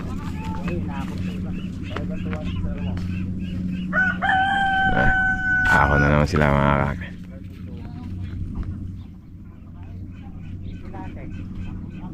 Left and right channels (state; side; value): identical; both; correlation 1.00